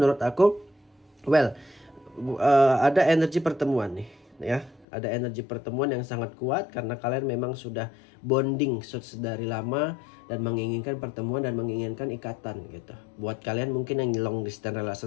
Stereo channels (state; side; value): drops out; right; at 4.9 s